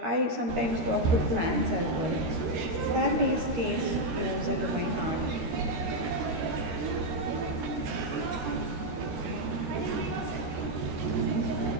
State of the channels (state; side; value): late; left; 13 ms